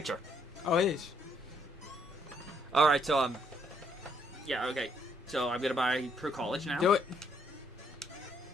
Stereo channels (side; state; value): both; normal; correlation 0.70